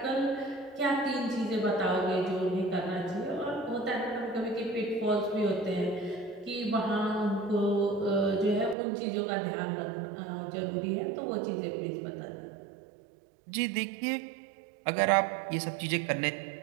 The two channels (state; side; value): drops out; left; at 8.8 s